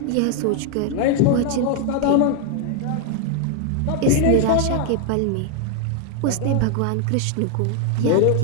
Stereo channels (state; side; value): different; both; correlation 0.00